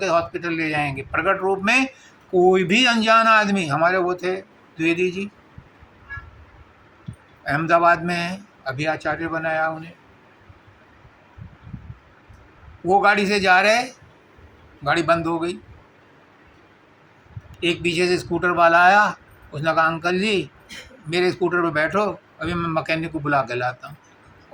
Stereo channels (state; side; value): identical; both; correlation 1.00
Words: हॉस्पिटल ले जाएंगे। प्रकट रूप में कोई भी अनजान आदमी, हमारे वो थे द्विवेदी जी, अहमदाबाद में है, अभी आचार्य बनाया उन्हें। वो गाड़ी से जा रहे, गाड़ी बंद हो गई। एक पीछे से स्कूटर वाला आया, उसने कहा अंकल जी मेरे स्कूटर पे बैठो, अभी मैं मैकेनिक को बुला के लाता हूँ।